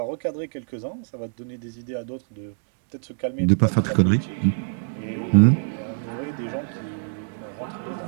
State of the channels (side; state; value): left; silent; digital silence